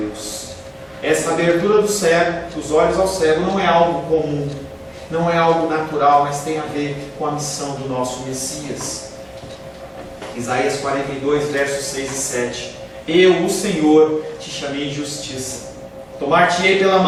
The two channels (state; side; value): identical; both; correlation 1.00